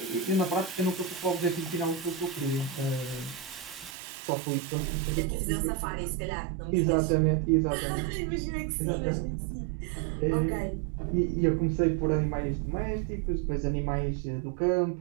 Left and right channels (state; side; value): drops out; left; at 4.0 s